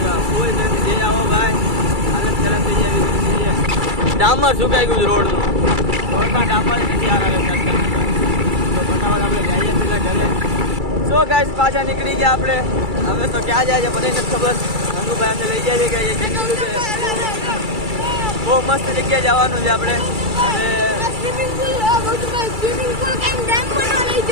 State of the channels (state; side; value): late; left; 2.3 ms